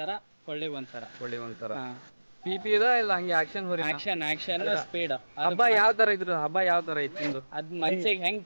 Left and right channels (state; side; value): inverted; both; correlation -1.00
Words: ಸರ, ಕೊಳ್ಳಿಗೆ 1 ಸರ. ಒಳ್ಳೆ ಒಂಥರ ಪಿ ಇದ ಇಲ್ಲ ಹಂಗೆ ಆಕ್ಷನ್ ಹೋರಿ? Action speed. ಹಬ್ಬ ಯಾವ ತರ ಇದ್ರು? ಹಬ್ಬ ಯಾವ ತರ ಇತ್ತು? ಅದ್ ಮನ್ಸಿಗೆ ಹೆಂಗ್